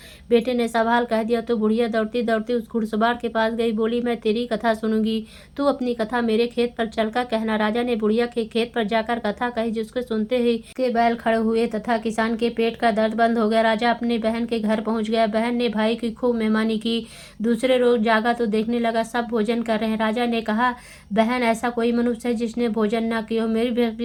बेटे ने सवाल कह दिया तो बुढ़िया दौड़ती दौड़ती उस घुड़सवार के पास गई। बोली, मैं तेरी कथा सुनूंगी, तू अपनी कथा मेरे खेत पर चलकर कहना। राजा ने बुढ़िया के खेत पर जाकर कथा कही, जिसको सुनते ही के बैल खड़े हुए तथा किसान के पेट का दर्द बंद हो गया। राजा अपनी बहन के घर पहुंच गया। बहन ने भाई की खूब मेहमानी की। दूसरे रोज जागा तो देखने लगा सब भोजन कर रहे हैं। राजा ने कहा, बहन, ऐसा कोई मनुष्य है जिसने भोजन न किया हो, मेरी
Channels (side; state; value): both; identical; correlation 1.00